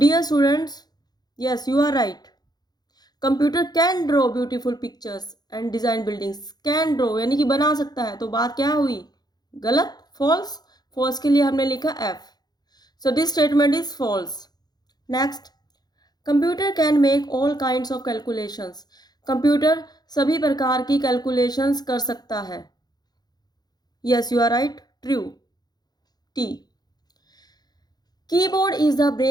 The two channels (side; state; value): right; late; 0.19 ms